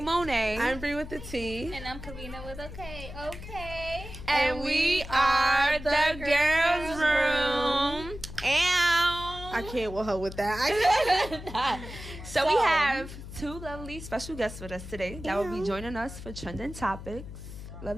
Monet. I'm Bree with the T. And I'm Karina with a K. Okay. And we are the Girlsss Room. I can't with her with that. So we have two lovely special guests with us today that will be joining us for Trending Topics.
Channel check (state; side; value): noise; left; hum, 12 dB below the sound